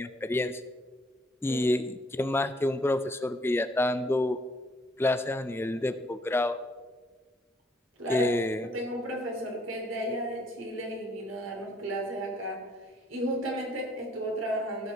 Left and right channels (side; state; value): both; normal; correlation 0.65